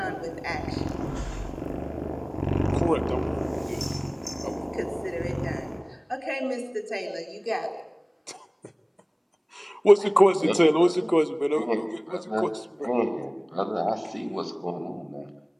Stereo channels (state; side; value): identical; both; correlation 1.00